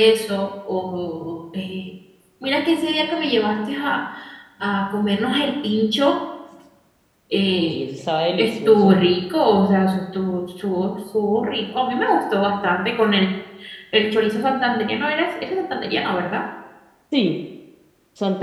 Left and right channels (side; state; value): both; identical; correlation 1.00